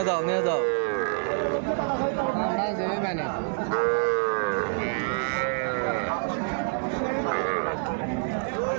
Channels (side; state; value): left; silent; digital silence